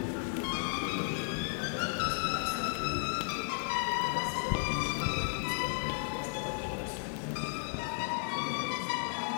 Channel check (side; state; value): right; silent; 55 dB below the other